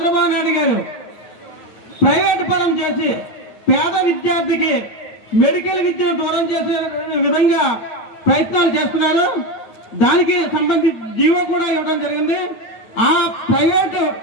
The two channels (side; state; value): right; late; 9.1 ms